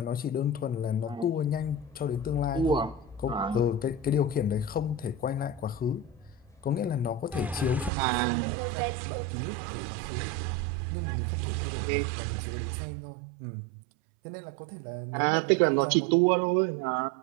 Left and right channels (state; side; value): drops out; left; at 7.9 s